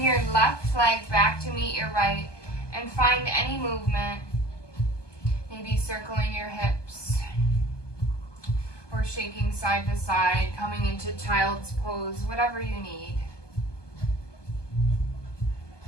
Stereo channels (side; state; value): right; late; 1.2 ms